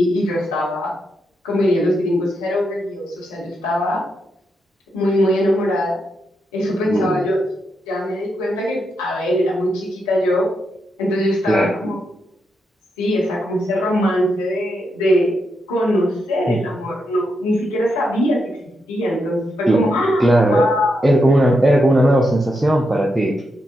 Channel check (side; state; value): both; normal; correlation 0.83